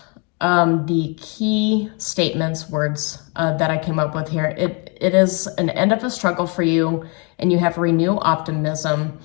the key statements, words that I came up with here, it is an end of a struggle for you and you have renewed optimism.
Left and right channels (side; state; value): right; quieter; 34.3 dB